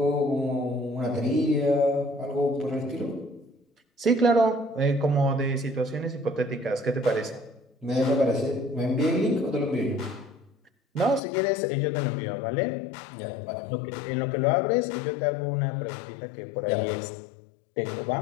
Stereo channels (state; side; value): drops out; right; at 11.2 s